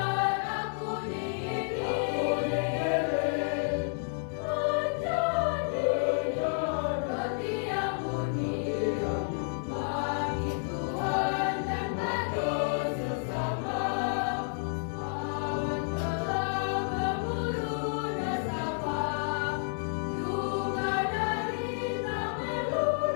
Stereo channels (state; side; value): silent; right; digital silence